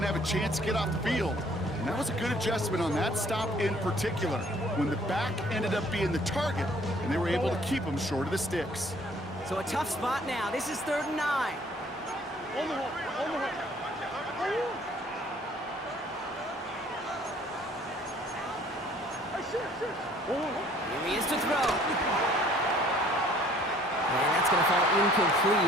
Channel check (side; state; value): both; normal; correlation 0.57